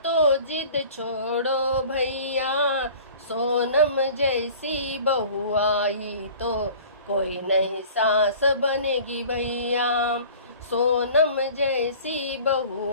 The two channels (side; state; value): both; inverted; correlation -0.45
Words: तो जिद छोड़ो भैया। सोनम जैसी बहू आई तो कोई नई सास बनेगी भैया। सोनम जैसी बहू